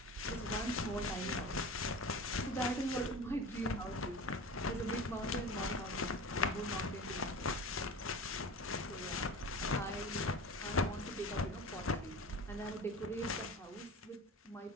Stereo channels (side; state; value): both; normal; correlation 0.34